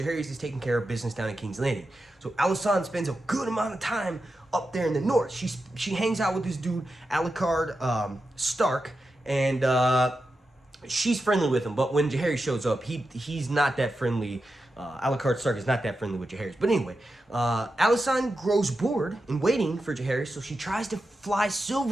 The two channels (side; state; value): both; normal; correlation 0.90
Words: is taking care of business down in King's Landing. So Alysanne spends a good amount of time up there in the north. She hangs out with this dude, Alucard Stark, and she's friendly with him. But when Jaehaerys shows up, he's not that friendly. Alucard Stark is not that friendly with Jaehaerys. But anyway, Alysanne grows bored in waiting for Jaehaerys, so she tries to fly